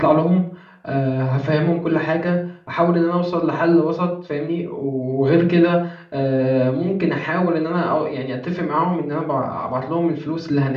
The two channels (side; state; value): both; identical; correlation 1.00